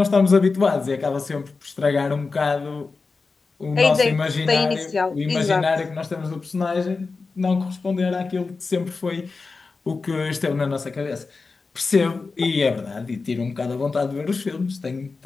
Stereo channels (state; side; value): quieter; right; 4.2 dB